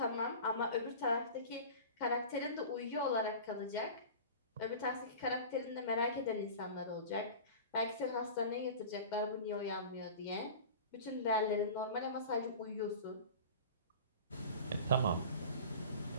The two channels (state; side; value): inverted; both; correlation -0.36